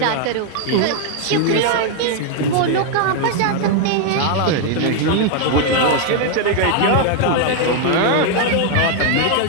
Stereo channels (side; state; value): both; different; correlation 0.00